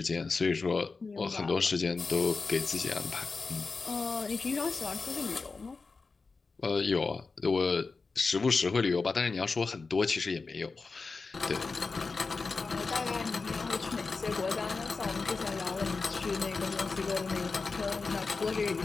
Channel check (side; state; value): right; quieter; 4.3 dB